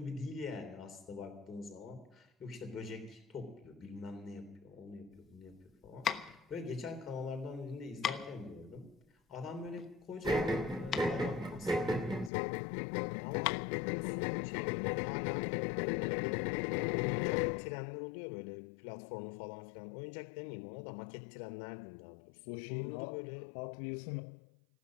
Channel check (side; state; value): right; drops out; at 12.3 s